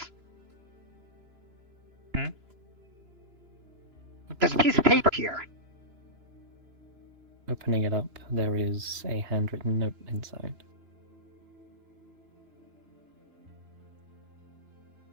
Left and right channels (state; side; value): late; left; 2.9 ms